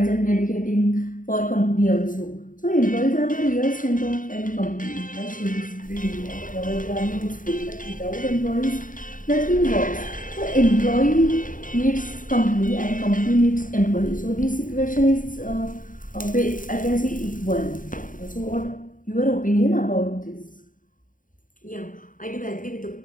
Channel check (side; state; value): right; late; 0.39 ms